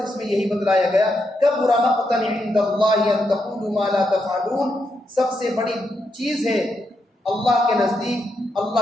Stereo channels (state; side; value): normal; both; correlation 0.82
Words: اس میں یہی بتلایا گیا، کبر مقتا عند اللہ ان تقولوا ما لا تفعلون، سب سے بڑی چیز ہے اللہ کے نزدیک